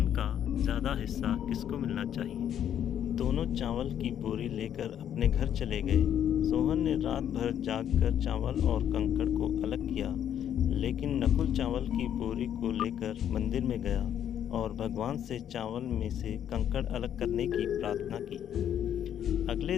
का ज़्यादा हिस्सा किसको मिलना चाहिए। दोनों चावल की बोरी लेकर अपने घर चले गए। सोहन ने रात भर जागकर चावल और कंकड़ को अलग किया, लेकिन नकुल चावल की बोरी को लेकर मंदिर में गया और भगवान से चावल में से कंकड़ अलग करने की प्रार्थना की। अगले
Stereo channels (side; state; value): right; quieter; 9.8 dB